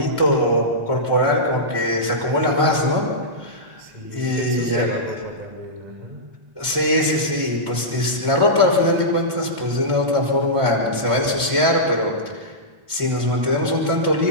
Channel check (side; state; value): left; late; 1.4 ms